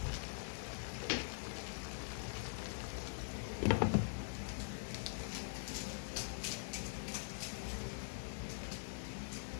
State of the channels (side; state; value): right; silent; digital silence